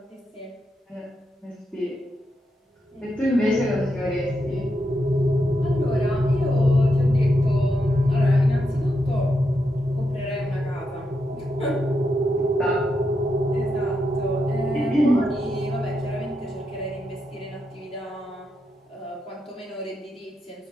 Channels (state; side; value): normal; both; correlation 0.84